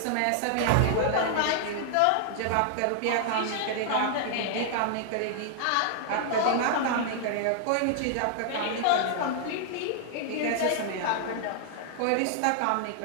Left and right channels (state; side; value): different; both; correlation 0.00